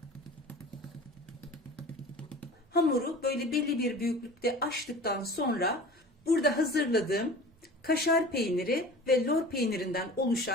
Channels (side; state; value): both; normal; correlation 0.39